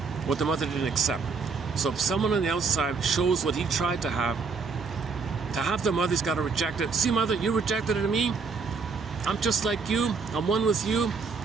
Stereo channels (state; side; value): quieter; left; 5.0 dB